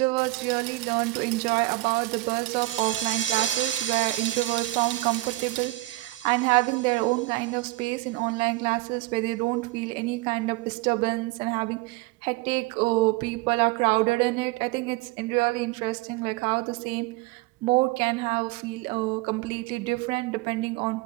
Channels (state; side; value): quieter; left; 19.1 dB